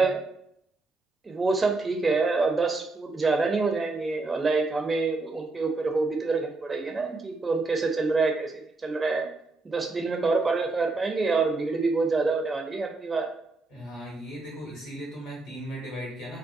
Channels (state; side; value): quieter; left; 3.5 dB